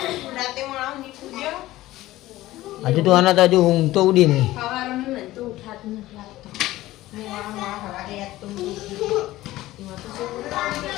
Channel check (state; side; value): quieter; right; 16.5 dB